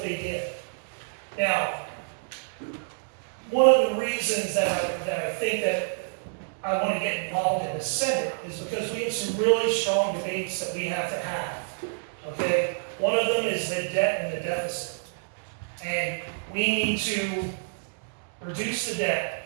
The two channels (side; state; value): left; silent; digital silence